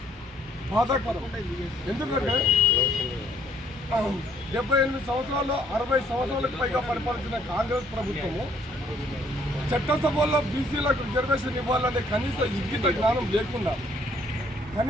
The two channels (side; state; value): both; normal; correlation 0.64